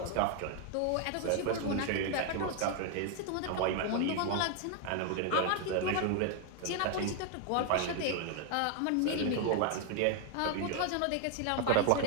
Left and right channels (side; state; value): both; different; correlation 0.00